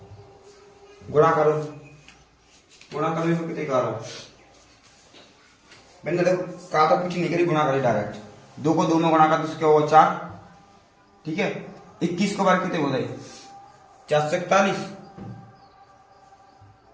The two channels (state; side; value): identical; both; correlation 1.00